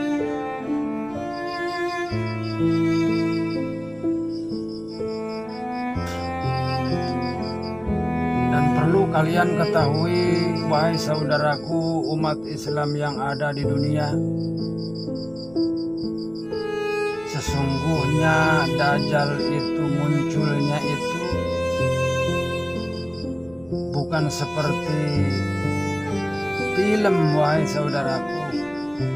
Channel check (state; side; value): noise; right; rumble, 25 dB below the sound